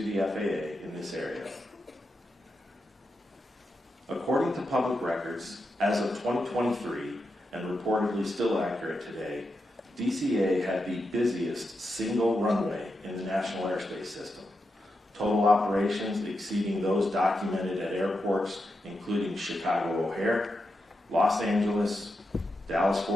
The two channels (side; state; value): both; normal; correlation 0.87